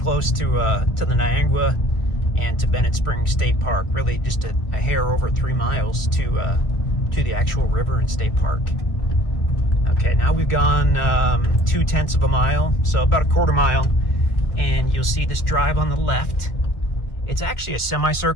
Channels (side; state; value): right; late; 1.4 ms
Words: to the Niagara and to Bennett Springs State Park. Really just a hair over 3 miles to the actual river and state park. Okay, now we've gone 0.2 of a mile, so about a quarter mile, and you'll see this drive on the left. It's actually a